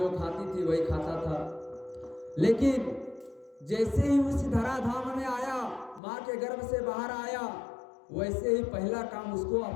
खाती थी वही खाता था। लेकिन जैसे ही उस धराधाम में आया, माँ के गर्भ से बाहर आया, वैसे ही पहला काम उसको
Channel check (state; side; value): drops out; right; at 6.0 s